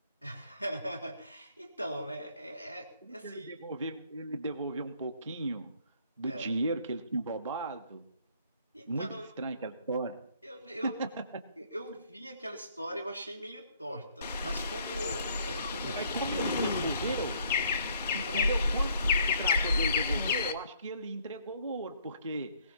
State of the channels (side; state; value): both; inverted; correlation -0.61